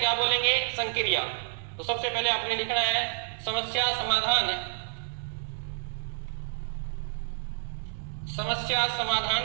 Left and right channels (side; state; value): left; silent; digital silence